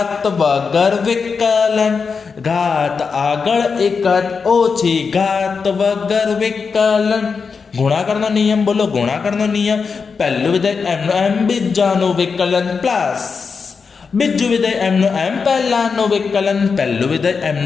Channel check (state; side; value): quieter; right; 5.3 dB